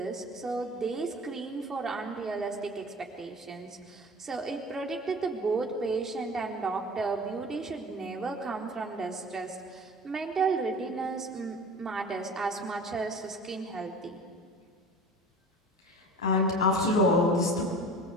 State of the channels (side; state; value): both; normal; correlation 0.40